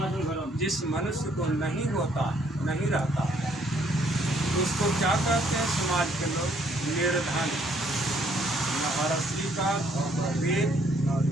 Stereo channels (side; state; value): both; normal; correlation 0.66